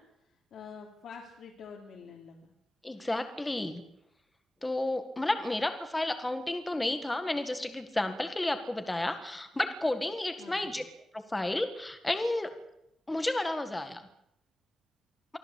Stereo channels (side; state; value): both; normal; correlation 0.98